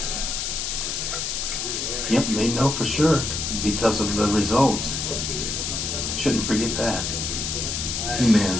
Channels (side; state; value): left; noise; hiss, 2 dB below the sound